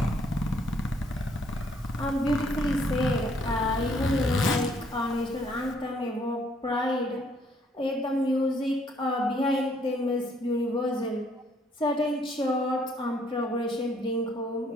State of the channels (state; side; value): normal; both; correlation 0.66